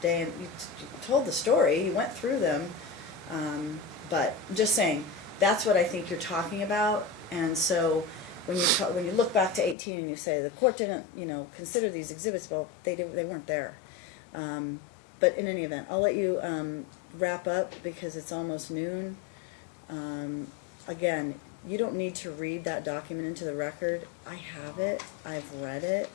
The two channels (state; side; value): drops out; right; at 9.8 s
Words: and you told the story. You went through them, but I'm just saying that's what I think you're talking about. And so when you look back to 18 and you say the court didn't consider these exhibits, well, they weren't there. But in any event, I'll let you wrap up because it's almost noon. Again, you don't need to read that document into the record. I have it. I've read it.